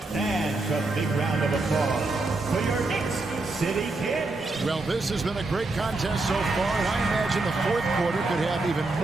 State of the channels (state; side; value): quieter; left; 3.2 dB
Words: And a big round of applause for your Knicks City Kid. Well, this has been a great contest so far, and I imagine the fourth quarter could have even